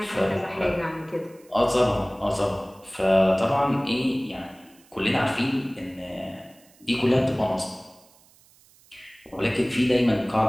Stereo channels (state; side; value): noise; right; hiss, 29 dB below the sound